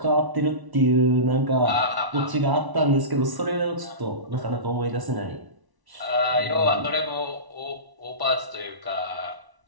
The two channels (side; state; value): left; late; 1.0 ms